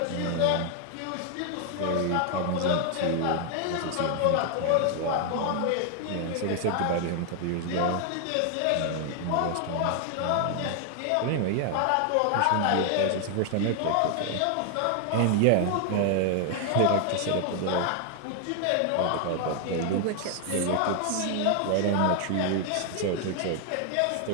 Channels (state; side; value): different; both; correlation 0.00